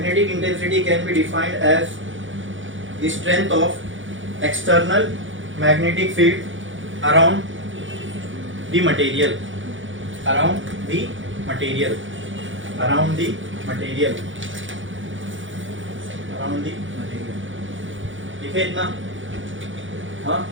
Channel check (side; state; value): left; late; 0.56 ms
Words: intensity can be defined as the strength of external magnetic field around the material, around the material, around the material, around the material। लिखे इतना? हाँ,